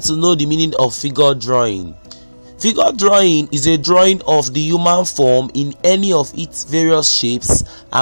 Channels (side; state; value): both; inverted; correlation -1.00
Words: to know the meaning of figure drawing. Figure drawing is a drawing of the human form in any of its various shapes